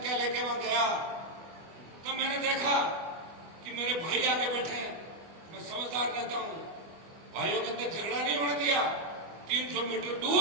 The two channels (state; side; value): late; left; 25 ms